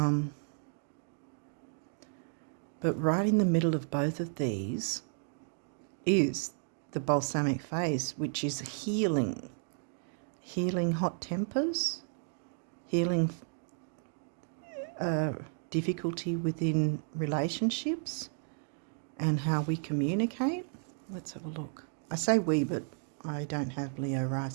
right in the middle of both of these is the balsamic phase, which is healing. Healing hot tempers, healing difficulty within relationships and how we communicate. Let's have a look. I say we, but I don't have Leo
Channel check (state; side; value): silent; left; 56 dB below the other